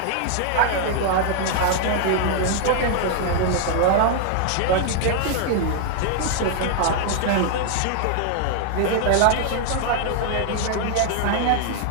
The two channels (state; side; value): different; both; correlation 0.00